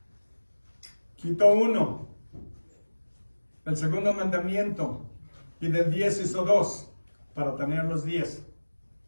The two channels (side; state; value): both; inverted; correlation -1.00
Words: quitó 1, el segundo mandamiento, y del 10 hizo 2, para tener los 10.